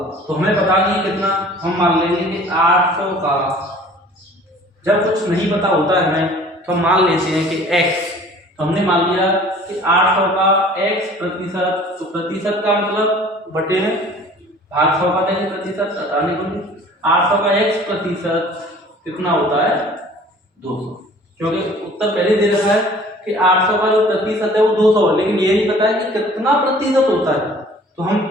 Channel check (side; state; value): both; normal; correlation 0.49